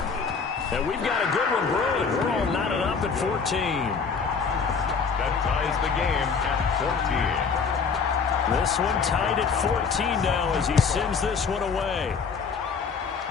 And we've got a good one brewing. We're all knotted up at 14. That ties the game at 14. This one tied at 14 now as he sends this one away.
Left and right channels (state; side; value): quieter; right; 5.6 dB